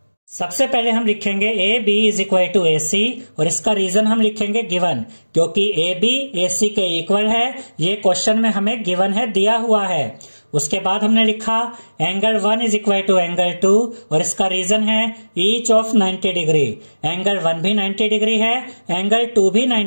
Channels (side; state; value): both; inverted; correlation -1.00